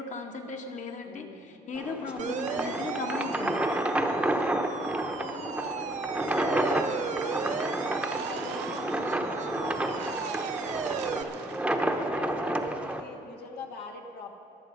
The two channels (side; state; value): both; normal; correlation 0.65